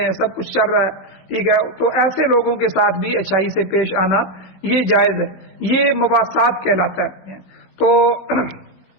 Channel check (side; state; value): right; late; 16 ms